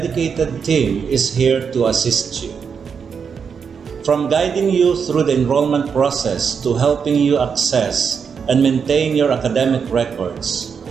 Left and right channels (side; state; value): left; quieter; 6.4 dB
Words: team is here to assist you. From guiding you through the enrollment process to helping you access and maintain your academic records,